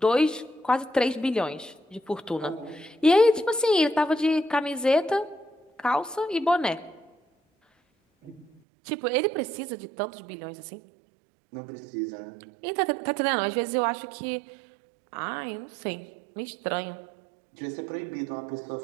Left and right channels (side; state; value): left; drops out; at 8.5 s